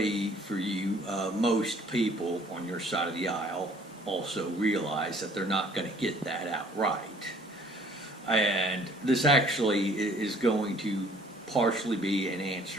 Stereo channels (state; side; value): normal; both; correlation 0.57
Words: for you, most people on your side of the aisle also realize that they're not going to get that outright. And this actually is going to partially be an